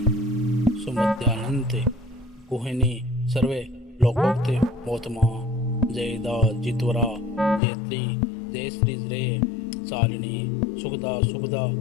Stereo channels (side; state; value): right; drops out; at 7.6 s